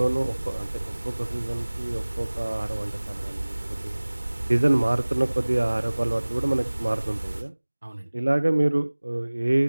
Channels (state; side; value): inverted; both; correlation -1.00